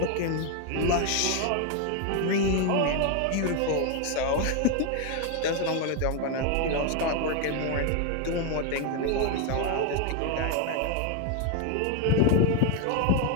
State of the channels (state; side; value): different; both; correlation 0.01